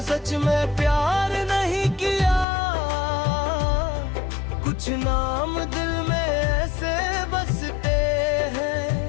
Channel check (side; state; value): right; drops out; at 2.5 s